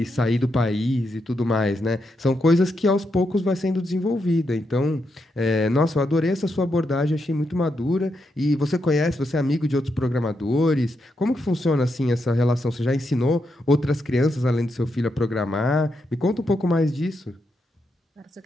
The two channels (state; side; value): normal; both; correlation 0.82